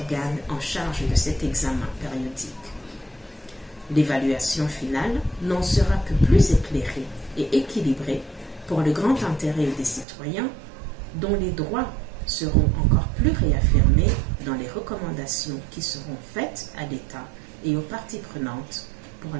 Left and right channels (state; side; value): drops out; left; at 10.1 s